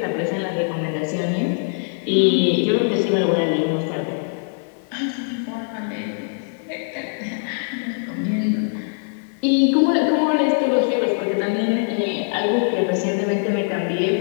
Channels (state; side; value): silent; right; 64 dB below the other